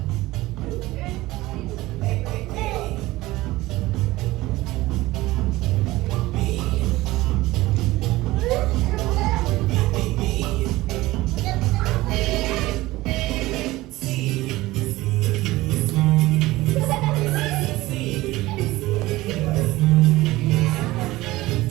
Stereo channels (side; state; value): left; quieter; 18.5 dB